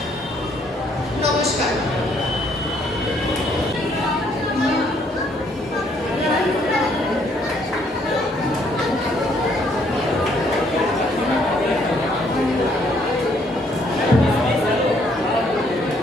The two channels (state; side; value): normal; both; correlation 0.67